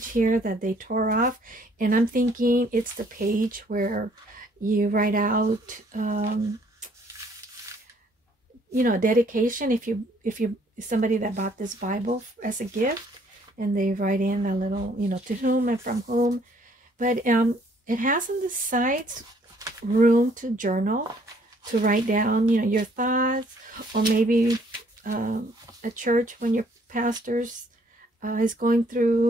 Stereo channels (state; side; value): normal; both; correlation 0.63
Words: here that they tore off, and I'm thinking it's the page where you write out you know, dedication if somebody that bought this Bible as a gift, and they write in a little, you know, to whom and from whom. But it has on the sides room to journal, to write down, you know, your thoughts, or maybe at church when your pastor's is going